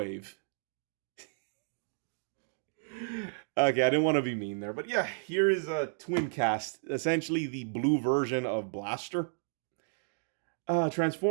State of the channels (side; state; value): left; silent; digital silence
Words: Okay, I didn't want to be mean there, but yeah, here is a Twincast, essentially the blue version of Blaster.